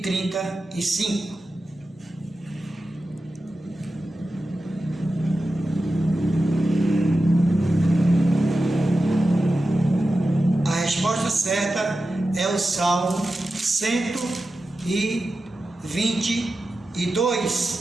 A resposta certa é o Salmo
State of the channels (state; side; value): normal; both; correlation 0.92